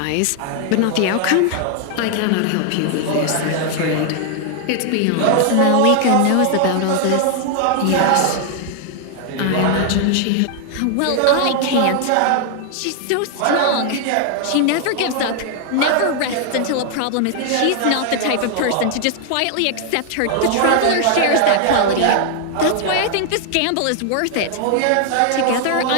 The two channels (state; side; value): different; both; correlation 0.00